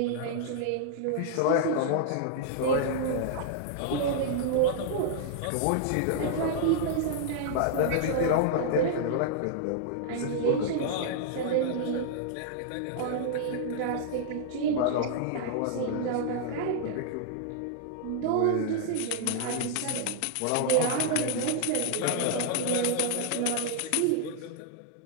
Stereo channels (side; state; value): both; different; correlation -0.01